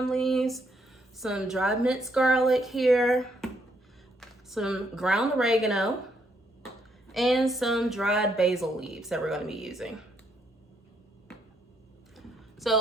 leaves, some dried minced garlic here, some ground oregano, and some dried basil leaves that we're going to be using.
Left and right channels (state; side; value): normal; both; correlation 0.74